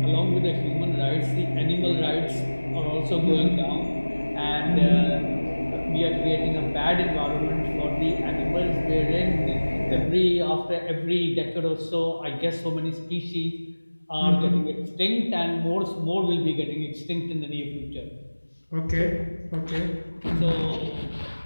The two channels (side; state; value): both; inverted; correlation -1.00